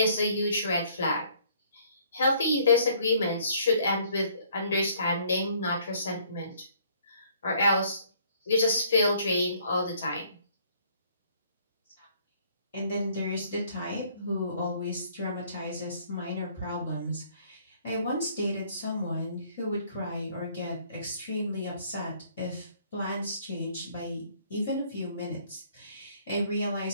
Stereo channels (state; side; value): inverted; both; correlation -0.61